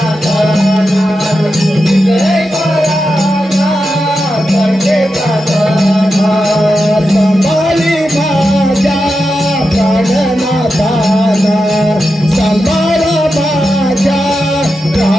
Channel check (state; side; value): normal; both; correlation 0.89